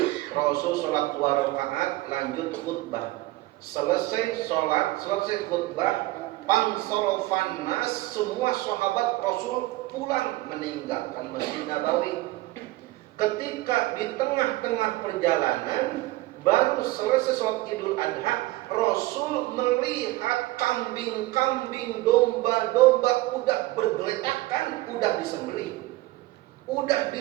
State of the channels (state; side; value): quieter; left; 19.0 dB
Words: Rasul sholat 2 rakaat, lanjut khutbah. Selesai sholat, selesai khutbah, pansorofan nas, semua sahabat Rasul pulang meninggalkan Masjid Nabawi. Ketika di tengah-tengah perjalanan, baru selesai sholat Idul Adha, Rasul melihat kambing-kambing, domba-domba udah bergeletakan, udah disembelih, udah